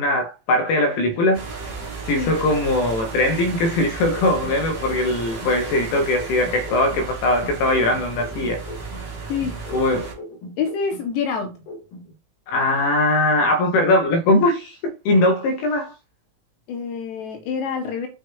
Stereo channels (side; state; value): right; late; 18 ms